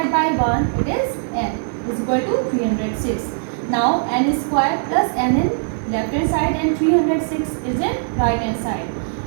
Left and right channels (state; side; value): silent; left; 66 dB below the other